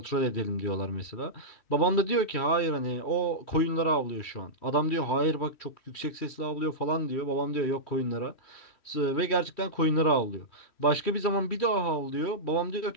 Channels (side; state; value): right; late; 3.1 ms